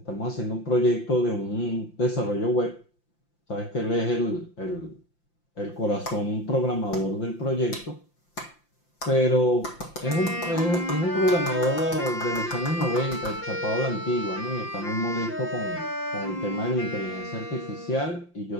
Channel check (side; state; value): right; late; 5.8 ms